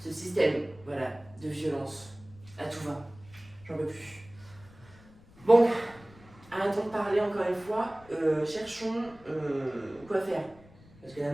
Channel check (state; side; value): noise; left; rumble, 24 dB below the sound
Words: système, voilà, de violence à tout va. J'en peux plus. Bon, arrêtons de parler encore une fois, cherchons quoi faire. Parce que la